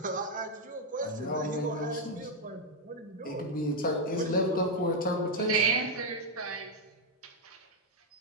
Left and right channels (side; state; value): both; normal; correlation 0.00